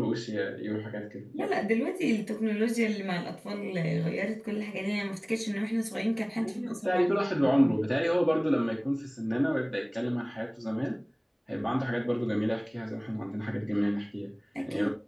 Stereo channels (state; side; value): identical; both; correlation 1.00